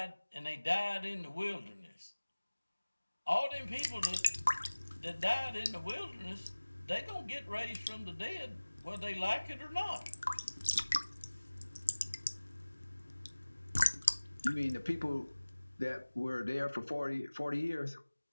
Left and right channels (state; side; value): inverted; both; correlation -1.00